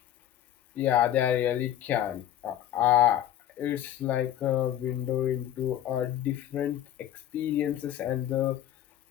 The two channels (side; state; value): right; quieter; 11.6 dB